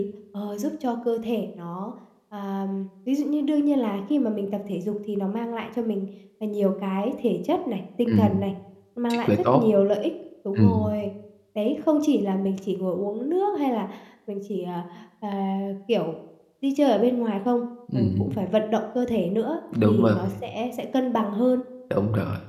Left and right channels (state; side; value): identical; both; correlation 1.00